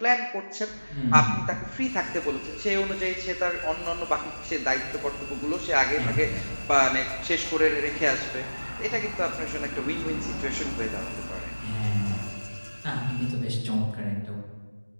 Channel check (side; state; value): both; inverted; correlation -1.00